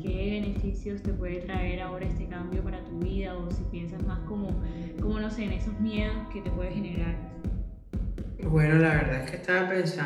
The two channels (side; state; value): both; identical; correlation 1.00